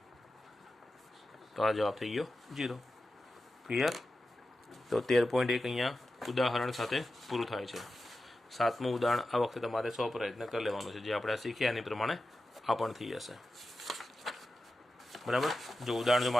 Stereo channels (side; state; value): both; normal; correlation 0.92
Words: તો આ જવાબ થઈ ગયો 0. ક્લિયર? તો 13.1 અહીંયા ઉદાહરણ સાથે પૂરું થાય છે. 7મું ઉદાહરણ આ વખતે તમારે 100 પ્રયત્ન કરી લેવાનું છે. જે આપણે શીખ્યા એની પ્રમાણે આ પણ થઈ જશે. બરાબર? જો ઉદાહરણ